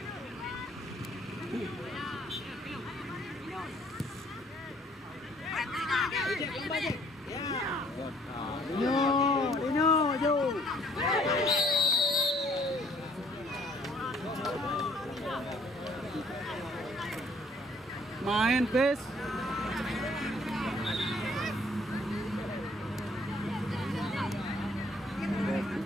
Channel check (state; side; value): normal; both; correlation 0.60